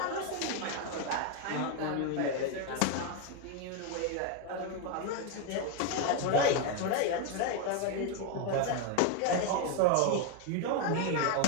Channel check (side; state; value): both; different; correlation 0.01